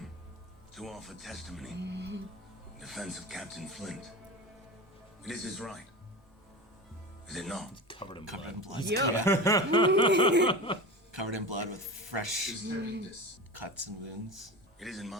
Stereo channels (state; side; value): normal; both; correlation 0.28